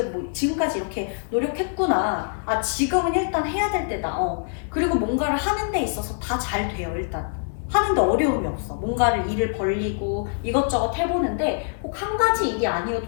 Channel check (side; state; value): right; silent; 62 dB below the other